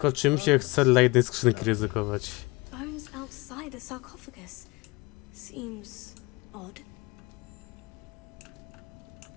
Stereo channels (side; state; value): right; quieter; 24.6 dB